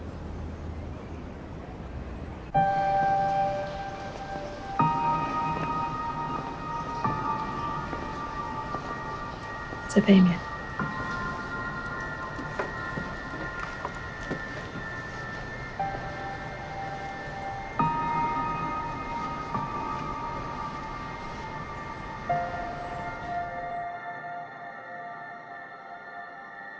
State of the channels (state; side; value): identical; both; correlation 1.00